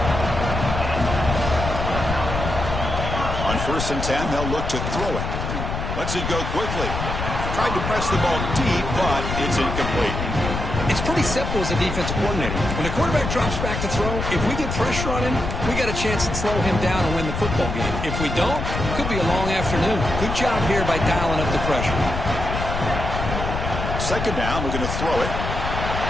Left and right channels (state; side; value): noise; left; rumble, 4 dB below the sound